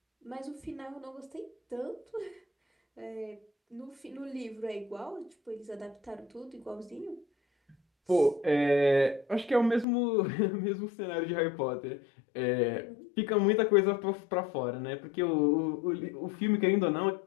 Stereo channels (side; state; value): right; drops out; at 9.9 s